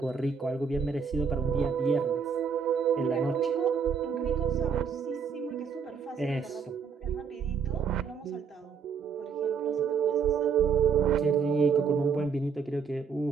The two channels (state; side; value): quieter; left; 6.1 dB